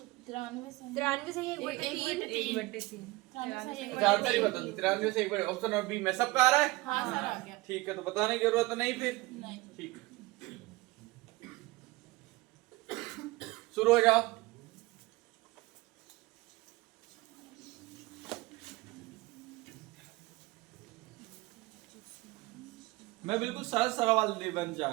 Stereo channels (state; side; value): quieter; left; 21.2 dB